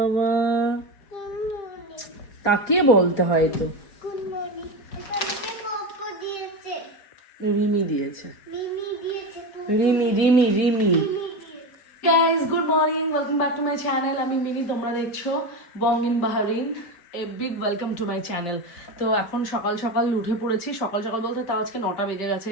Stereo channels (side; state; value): right; late; 5.4 ms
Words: তাকিয়ে বলতে হয় তো। রিমি দিয়েছে, Rimi. Guys good morning, welcome back to my channel. আমি মিনি, তোমরা দেখছো Bong in Bahrain. A big welcome to my channel. তো এখন সকাল সকাল উঠে পড়েছি, সকাল সকাল বলতে তাও আজকে 9টা বেজে গেছে,